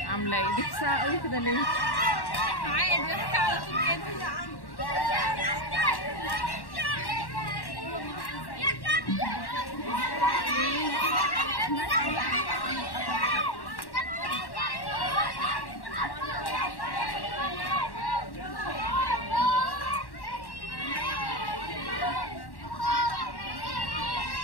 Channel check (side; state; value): right; late; 1.1 ms